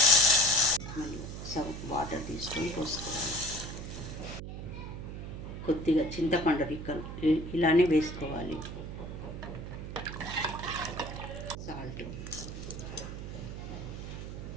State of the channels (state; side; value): noise; right; hum, 8 dB below the sound